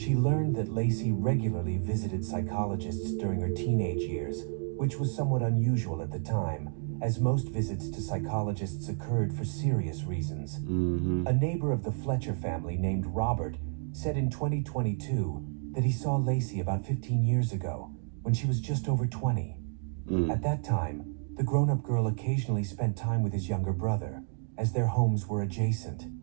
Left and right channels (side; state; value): left; silent; 57 dB below the other